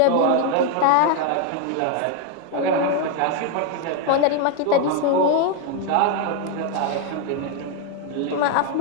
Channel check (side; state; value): both; different; correlation 0.01